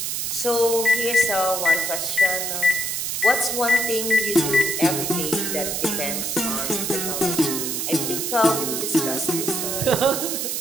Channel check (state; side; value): noise; right; hiss, 2 dB below the sound